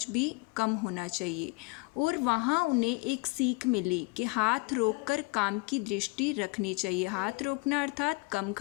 भी कम होना चाहिए। और वहाँ उन्हें एक सीख मिली कि हाथ रोककर काम की दृष्टि रखनी चाहिए। हाथ रोकना अर्थात कम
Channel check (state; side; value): quieter; right; 28.8 dB